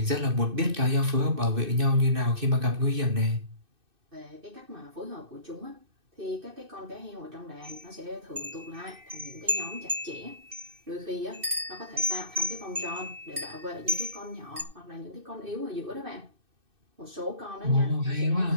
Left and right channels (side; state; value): left; late; 2.6 ms